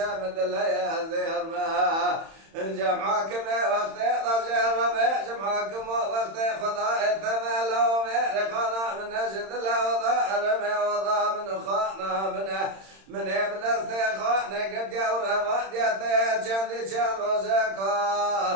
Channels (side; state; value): left; late; 31 ms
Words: مدليا زير ما جمعكم وقت ضجر ربع جمعكم وقت خضاء ثملوا مرقنا من نجد لا وضع من خانا من ابن استخانه قد يورا وديته جندي